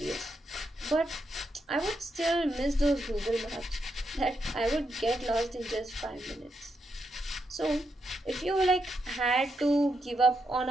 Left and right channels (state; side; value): normal; both; correlation 0.82